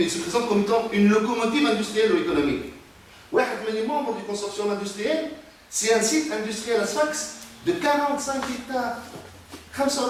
se présente comme étant une locomotive industrielle ou économique. Les membres du consortium industriel, c'est un site industriel à Sfax de 45 hectares,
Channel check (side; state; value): both; identical; correlation 1.00